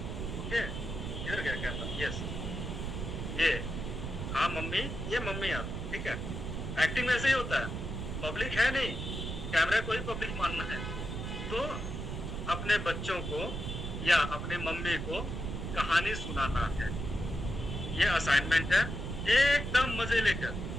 इधर क्या कैमरा, यस, ये, हाँ मम्मी, ये मम्मी आप, ठीक है। एक्टिंग में ऐसे ही होता है, पब्लिक है नहीं, कैमरा को ही पब्लिक मानना है। तो अपने बच्चों को या अपने मम्मी को कहानी सुनाना है, ये असाइनमेंट है, एकदम मजे लेकर।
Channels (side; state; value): right; noise; rumble, 5 dB below the sound